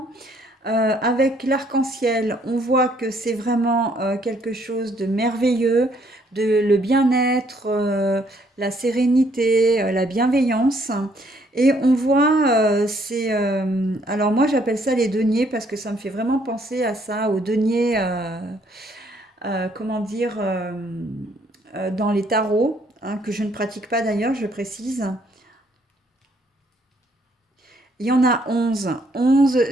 Avec l'arc-en-ciel, on voit que c'est vraiment quelque chose de merveilleux, le bien-être, la sérénité, la bienveillance. Et on voit, alors moi j'appelle ça les deniers parce que ça me fait vraiment penser à ça, aux deniers, comment dire, dans les tarots, hein, que je ne pratique pas d'ailleurs, je précise. Il y en a 11. 11,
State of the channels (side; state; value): both; normal; correlation 0.67